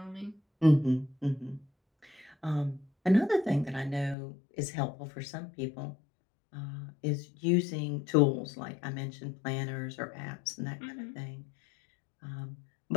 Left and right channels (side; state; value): right; drops out; at 4.2 s